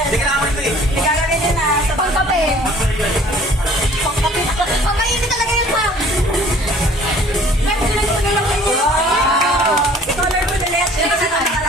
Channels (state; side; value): normal; both; correlation 0.52